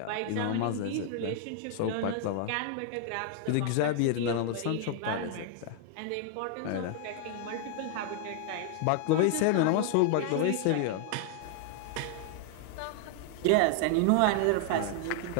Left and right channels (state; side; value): different; both; correlation 0.00